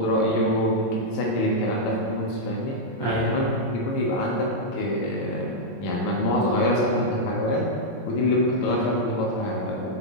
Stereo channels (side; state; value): right; late; 22 ms